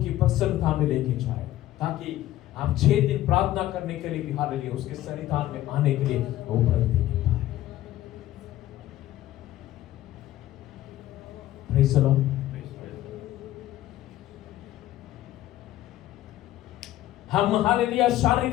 की प्रसन्नता में लेके जाए, ताकि आप 6 दिन प्रार्थना करने के लिए भी हालेलुया उसके सन्निधान में आने के लिए वो प्रयत्न पाए। Praise the Lord. हम हालेलुया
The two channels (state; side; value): quieter; right; 14.4 dB